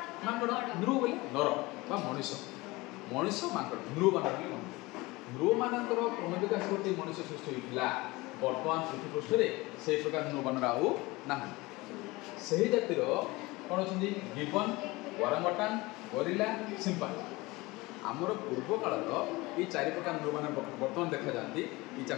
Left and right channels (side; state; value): right; quieter; 22.1 dB